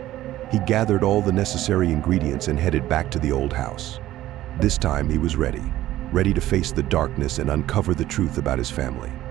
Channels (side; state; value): left; quieter; 14.5 dB